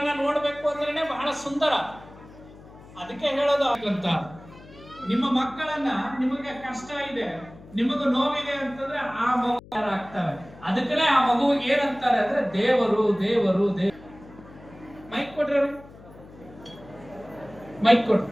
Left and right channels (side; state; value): left; noise; hum, 20 dB below the sound